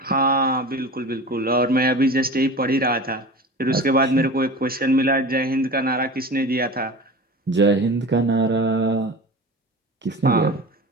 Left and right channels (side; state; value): both; normal; correlation 0.34